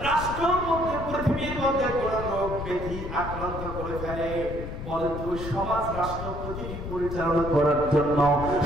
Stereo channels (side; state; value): left; noise; rumble, 8 dB below the sound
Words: রাষ্ট্রের মধ্যে, পৃথিবীর মধ্যে কোন রোগ ব্যাধি আক্রান্ত করে ফেলে, বলেন তো সমাজ রাষ্ট্র পৃথিবী পরিচালনা করার জন্য,